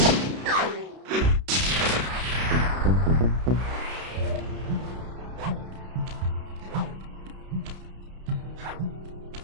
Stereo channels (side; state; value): left; late; 32 ms